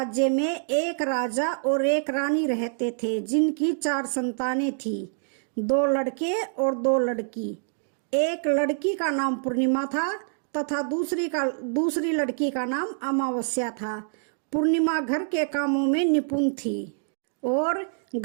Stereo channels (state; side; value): silent; left; digital silence